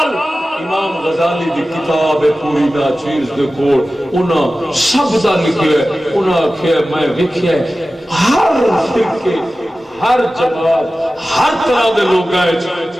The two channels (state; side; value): normal; both; correlation 0.95